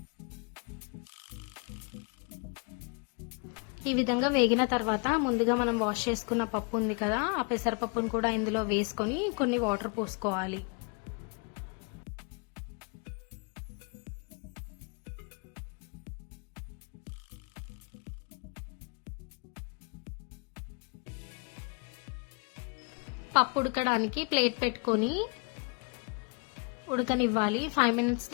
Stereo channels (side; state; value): right; quieter; 34.0 dB